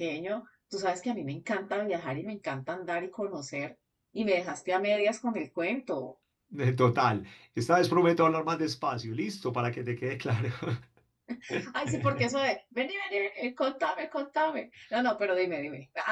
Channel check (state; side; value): identical; both; correlation 1.00